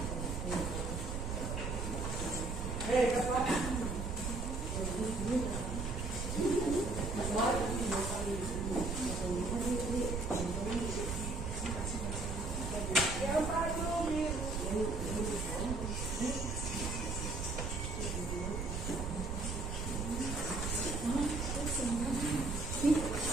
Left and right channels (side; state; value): right; noise; rumble, 3 dB below the sound